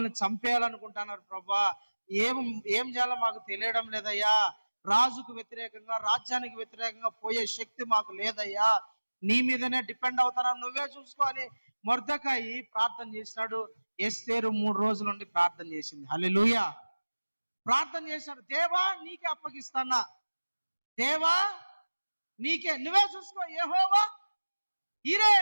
చంపేయాలనుకుంటున్నారు ప్రభా, ఏం చేయాలో మాకు తెలియడం లేదయ్యా, రాజుకు వ్యతిరేకంగా రాజ్యానికి వ్యతిరేకంగా పోయే శక్తి మాకు లేదయ్యా, నీ మీదనే డిపెండ్ అవుతారా, నువ్వే చూసుకోవాలి. మొర్దెకాయి ప్రార్థన చేసినాడు. ఎస్తేరు 3 రోజుల నుండి ప్రార్థన చేసింది. హల్లెలూయా, ప్రార్థన చేశాడు. దేవా నీకే అప్పగిస్తానా, దేవా నీకే, నువ్వే చూసుకో, యెహోవా ఈరే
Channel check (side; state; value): both; inverted; correlation -1.00